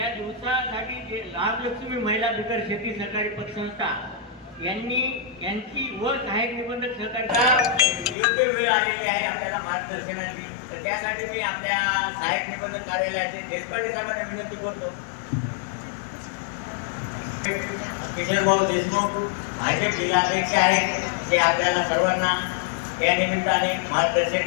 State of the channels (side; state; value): right; drops out; at 8.2 s